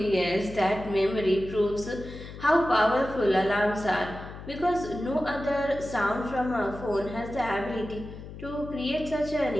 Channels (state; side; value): noise; left; hum, 13 dB below the sound